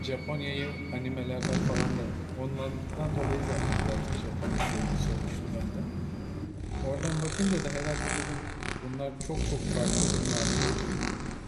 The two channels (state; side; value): identical; both; correlation 1.00